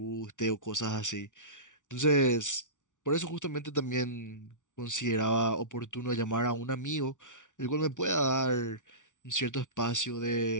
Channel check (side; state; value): right; late; 0.87 ms